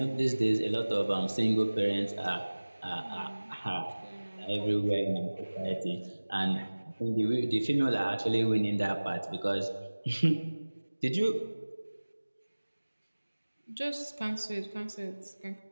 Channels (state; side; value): inverted; both; correlation -1.00